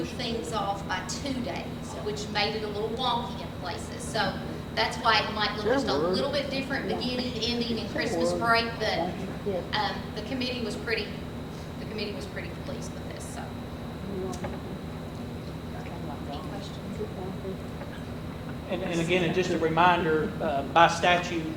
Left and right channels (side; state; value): both; identical; correlation 1.00